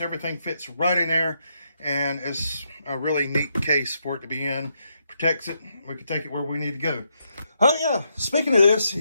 fits right in there, and it's a really neat case for it to be in. Protects it. We can take it where we need to go. Oh yeah, speaking of this,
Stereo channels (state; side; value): inverted; both; correlation -0.79